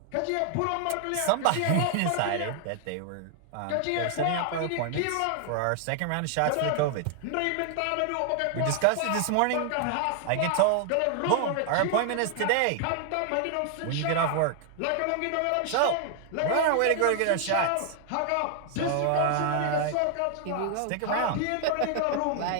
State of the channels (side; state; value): both; different; correlation 0.00